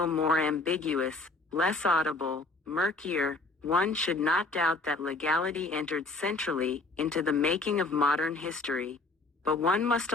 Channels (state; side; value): quieter; right; 3.3 dB